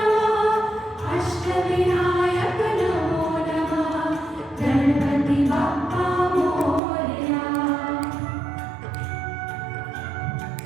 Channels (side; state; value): left; drops out; at 6.8 s